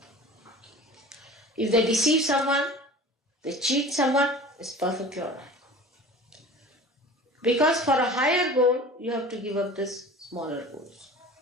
If they deceive someone, they cheat someone, it's perfectly alright. Because for a higher goal, you have to give up this smaller goals.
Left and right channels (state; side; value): normal; both; correlation 0.40